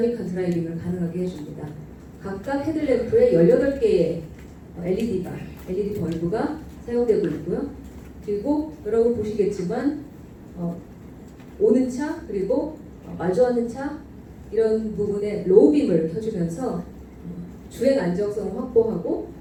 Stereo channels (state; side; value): identical; both; correlation 1.00